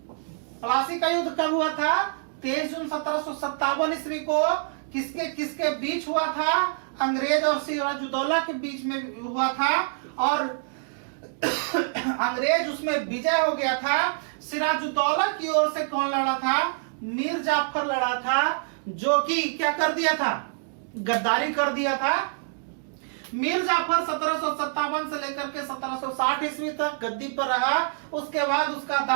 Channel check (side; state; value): left; silent; digital silence